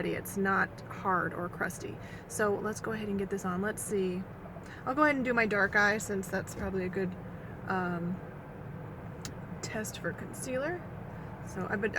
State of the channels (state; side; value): identical; both; correlation 1.00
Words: It's not hard or crusty. So let's go ahead and get this on. Let's see. I'll go ahead and do my dark eye since that's probably a good test for concealer. So